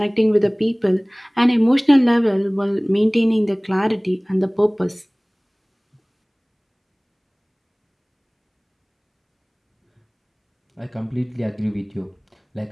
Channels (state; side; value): identical; both; correlation 1.00